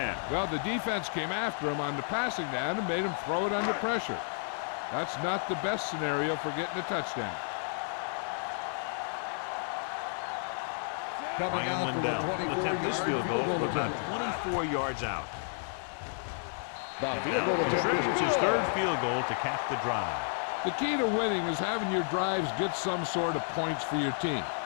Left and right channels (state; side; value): silent; right; digital silence